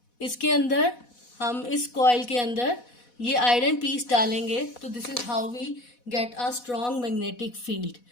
इसके अंदर हम इस कॉइल के अंदर ये आयरन पीस डालेंगे तो this is how we get a strong magnetic field.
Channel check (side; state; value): right; late; 4.1 ms